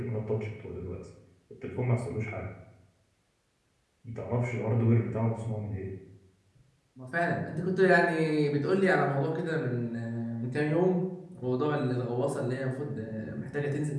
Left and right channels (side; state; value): both; identical; correlation 1.00